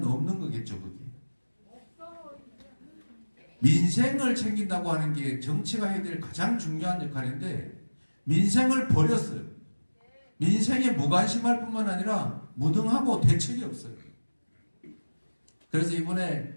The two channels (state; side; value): inverted; both; correlation -1.00